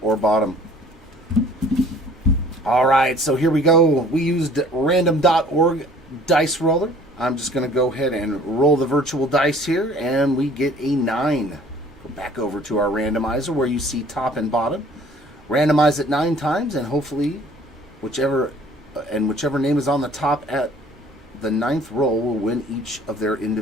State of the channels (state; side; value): normal; both; correlation 0.53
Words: or bottom. All right, so here we go. We used random.org dice roller. I'm just going to go ahead and roll the virtual dice here, and we get a 9. Go back over to our randomizer where you see top and bottom. Randomize it 9 times, and hopefully whichever name is on the top at the 9th roll will win each of their